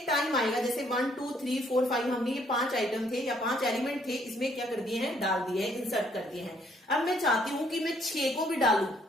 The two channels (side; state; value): both; normal; correlation 0.67